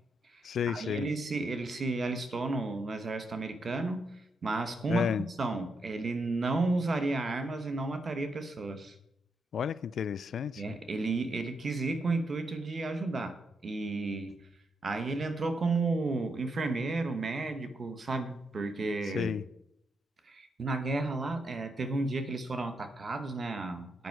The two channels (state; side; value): normal; both; correlation 0.81